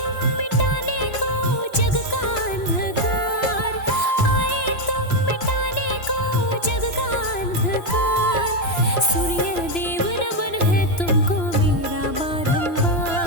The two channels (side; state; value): right; late; 3.0 ms